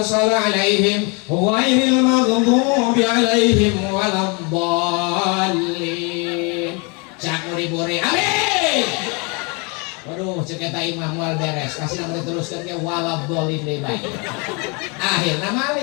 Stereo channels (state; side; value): quieter; right; 31.9 dB